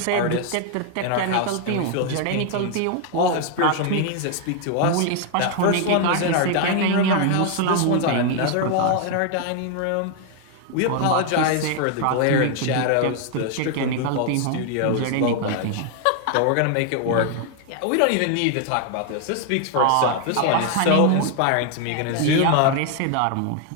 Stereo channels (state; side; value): different; both; correlation 0.00